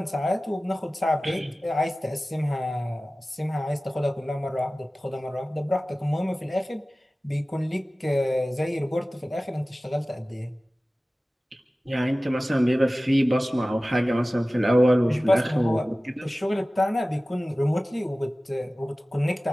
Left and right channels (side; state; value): both; normal; correlation 0.97